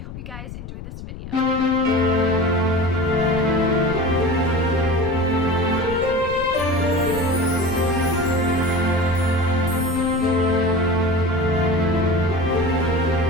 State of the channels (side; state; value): left; noise; rumble, 11 dB below the sound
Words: you guys enjoy this video.